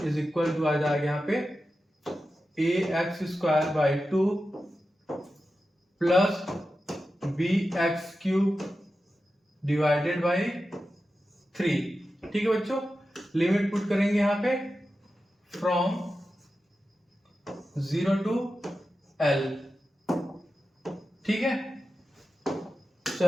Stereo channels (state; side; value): normal; both; correlation 0.92